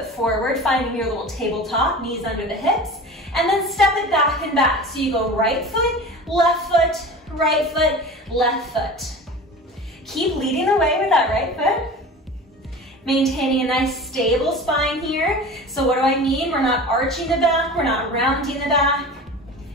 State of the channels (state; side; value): normal; both; correlation 0.36